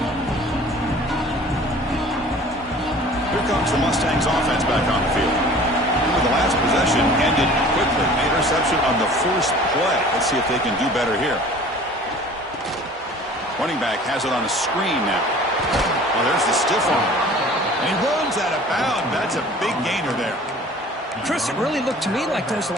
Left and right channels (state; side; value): normal; both; correlation 0.46